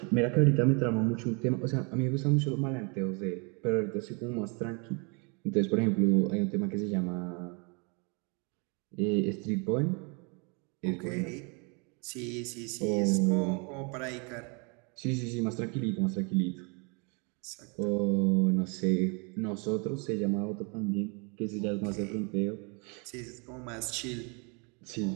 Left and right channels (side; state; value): left; quieter; 33.6 dB